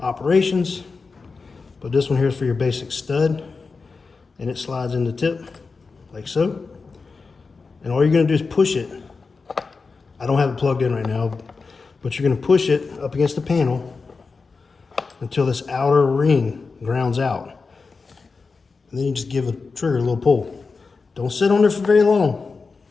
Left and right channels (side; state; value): right; quieter; 4.5 dB